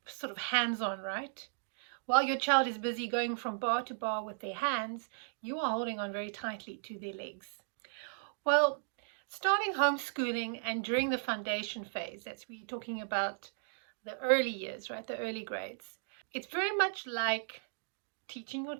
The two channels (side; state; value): left; silent; digital silence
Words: sort of hands-on, right? While your child is busy going from bar to bar with their hands, you are holding on very tightly to their legs. Well, starting homeschooling and during the foundation phase, that's we're talking about the early years, right? The early grades. It's very much like teaching your